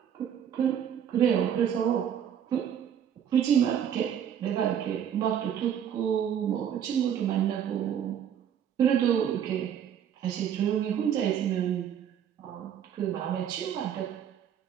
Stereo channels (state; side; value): quieter; left; 9.1 dB